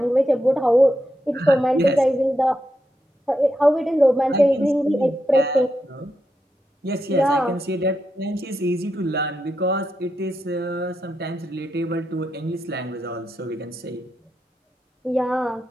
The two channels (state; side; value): normal; both; correlation 0.85